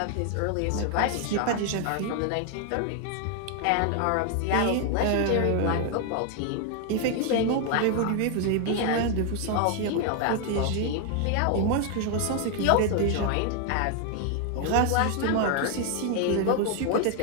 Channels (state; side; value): different; both; correlation 0.00